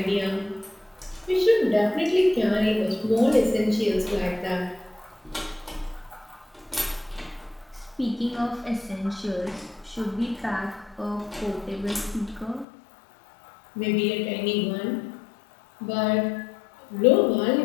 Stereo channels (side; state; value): right; drops out; at 12.7 s